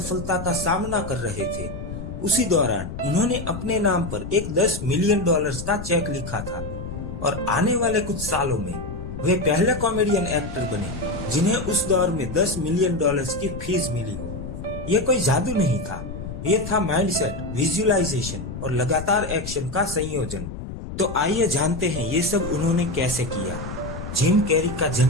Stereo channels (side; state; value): left; noise; rumble, 8 dB below the sound